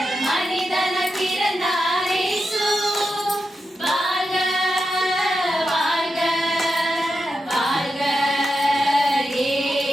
மனிதன பிறந்தார் இயேசு. வாழ்க வாழ்க வாழ்க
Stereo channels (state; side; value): normal; both; correlation 0.88